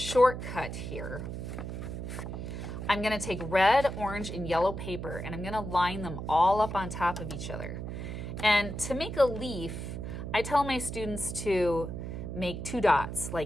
here. I'm gonna take red, orange, and yellow paper, and I'm gonna line them all up on top of each other. And to make a leaf, I tell my students to make two dots,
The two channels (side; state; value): right; noise; hum, 6 dB below the sound